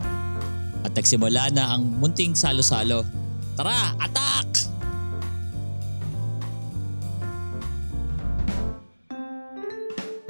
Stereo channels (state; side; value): inverted; both; correlation -1.00